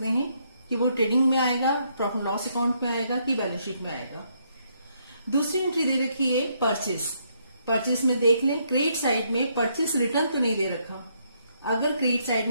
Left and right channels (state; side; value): inverted; both; correlation -0.73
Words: हैं कि वो ट्रेडिंग में आएगा, प्रॉफिट लॉस अकाउंट में आएगा कि बैलेंस शीट में आएगा। दूसरी एंट्री दे रखी है परचेस। परचेस में देख लें, क्रेडिट साइड में परचेस रिटर्न तो नहीं दे रखा। अगर क्रेडिट साइड